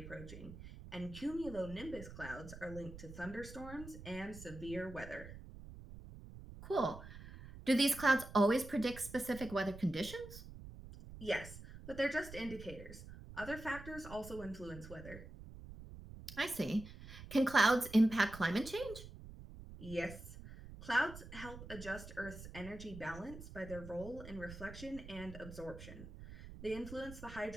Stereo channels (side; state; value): right; noise; rumble, 13 dB below the sound